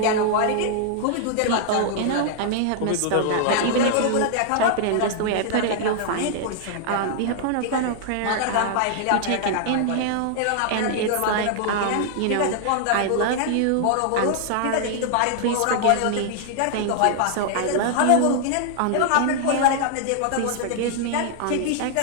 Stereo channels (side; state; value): both; different; correlation 0.00